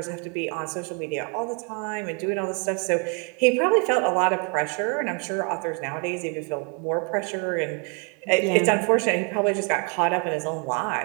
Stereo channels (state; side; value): quieter; left; 37.3 dB